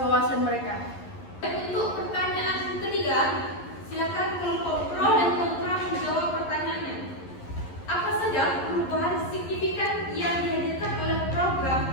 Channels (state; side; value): late; right; 11 ms